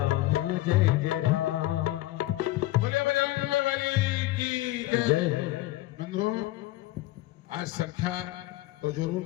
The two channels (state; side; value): quieter; right; 17.0 dB